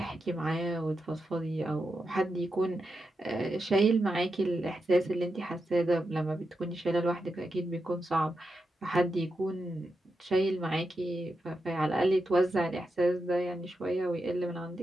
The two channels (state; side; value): normal; both; correlation 0.87